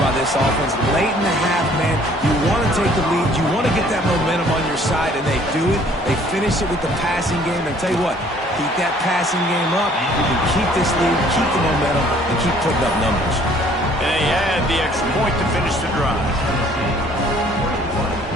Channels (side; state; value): both; normal; correlation 0.57